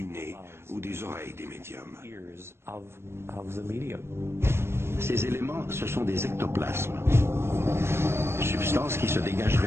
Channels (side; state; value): left; late; 0.12 ms